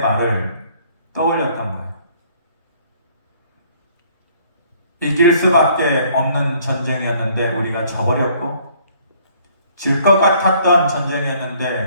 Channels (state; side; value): inverted; both; correlation -0.60